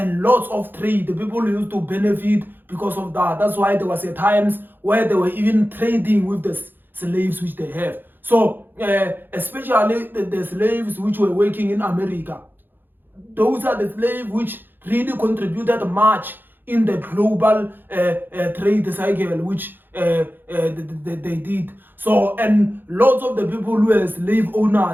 lots of trade, the people used to benefit because of that. That's why there was a times where they were even trading with the slaves which they have. So especially the slaves which were working in America, those are the slaves which really contributed much in the global trade cycle which they did. So, and lots of the people who were slave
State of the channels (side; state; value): left; late; 0.095 ms